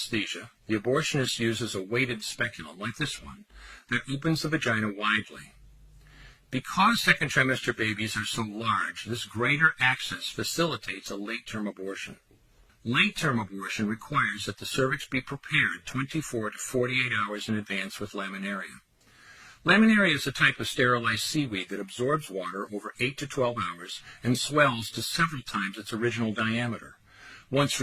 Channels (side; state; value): both; identical; correlation 1.00